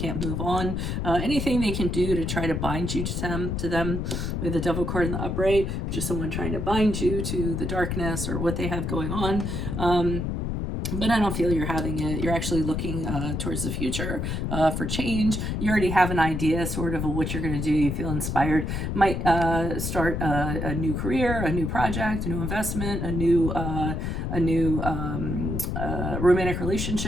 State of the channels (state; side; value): noise; left; rumble, 2 dB below the sound